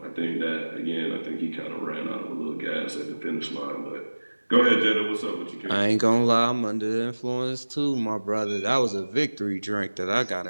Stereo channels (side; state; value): both; inverted; correlation -1.00